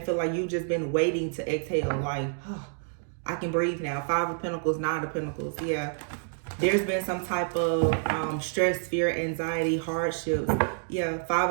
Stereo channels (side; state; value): left; silent; 59 dB below the other